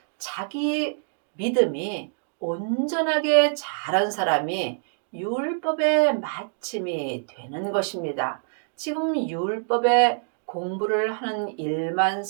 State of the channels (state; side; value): silent; left; digital silence